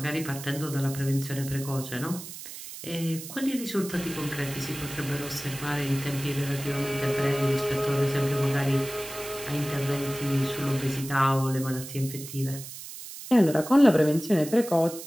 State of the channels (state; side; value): noise; right; hiss, 12 dB below the sound